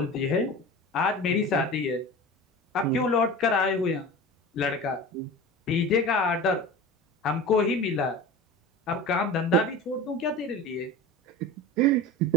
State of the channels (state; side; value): normal; both; correlation 0.33